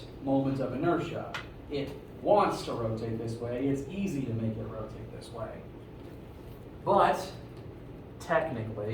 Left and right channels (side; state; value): both; identical; correlation 1.00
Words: moment of inertia. It wants to rotate this way. It's easy to make it rotate this way. But,